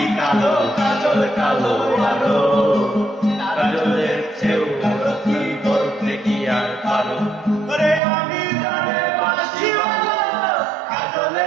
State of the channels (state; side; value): drops out; left; at 8.0 s